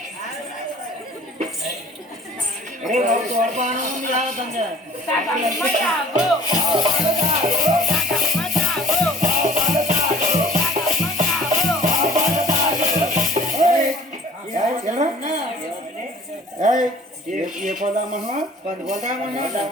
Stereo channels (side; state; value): both; normal; correlation 0.50